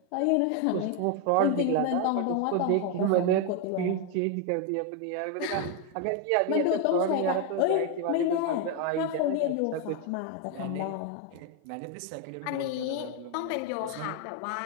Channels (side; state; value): both; different; correlation 0.01